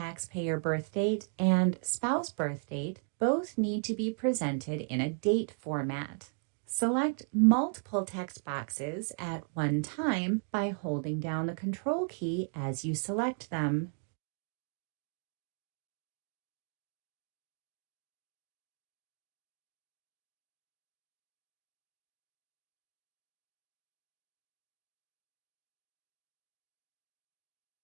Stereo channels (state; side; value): silent; left; 54 dB below the other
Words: birth date and spouse birth date both need to be presented in a date format. Select multiple text boxes at one time by holding down the Control key as you select them.